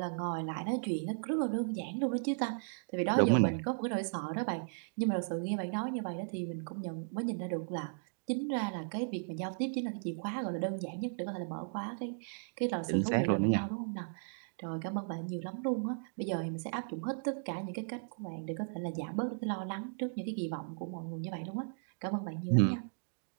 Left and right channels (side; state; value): left; silent; digital silence